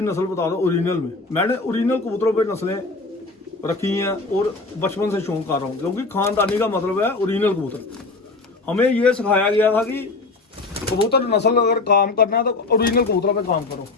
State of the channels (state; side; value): quieter; right; 3.6 dB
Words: नस्ल बता दो ओरिजिनल में। मैंने ओरिजिनल कबूतरों पे नस्लें रखी हैं और बचपन से शौक कर रहा हूँ, क्योंकि खानदानी का मतलब है ओरिजिनल कबूतर। हमें ये सिखाया गया था कि कबूतर नस्ल अगर काम करना है तो ओरिजिनल कबूतरों पे काम करो।